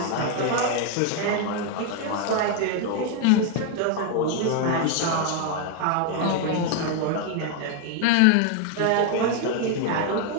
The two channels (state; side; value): different; both; correlation 0.01